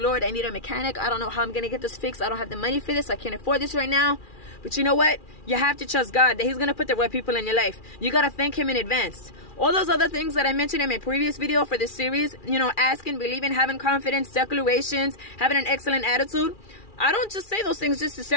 I need a mechanic. I don't know how I'm going to get this fixed. I don't have the money for this. I can't afford this right now. But you know what? You have to trust God that He's going to put the right people in your life. You got to thank Him in advance. All those other things that I mentioned in my previous video for this series, you know, asking, believing, having confidence, declarations, having an excellent attitude. I don't just say those things just to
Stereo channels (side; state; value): right; late; 2.4 ms